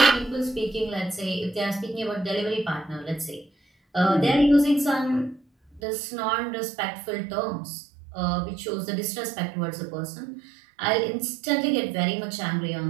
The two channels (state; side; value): drops out; left; at 5.8 s